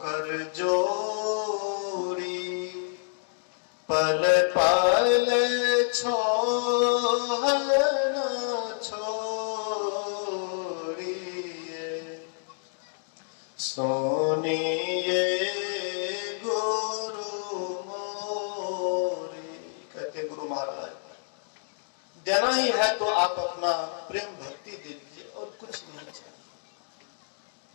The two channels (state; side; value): silent; right; digital silence